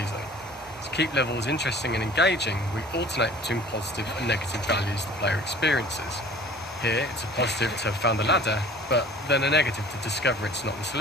To keep levels interesting and engaging, we alternate between positive and negative values the player experiences. Here, it's a positive to have found the ladder, but then a negative to discover it's not the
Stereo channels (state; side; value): normal; both; correlation 0.47